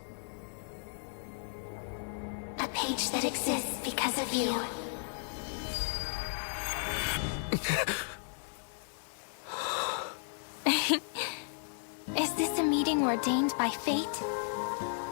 A page that exists because of you. Is this a meeting ordained by fate?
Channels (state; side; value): silent; right; digital silence